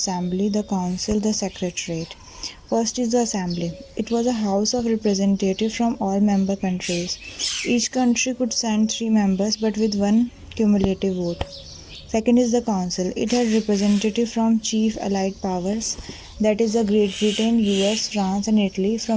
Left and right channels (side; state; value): both; identical; correlation 1.00